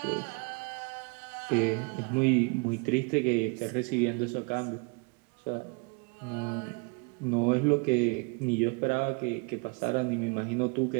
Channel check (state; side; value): quieter; left; 31.8 dB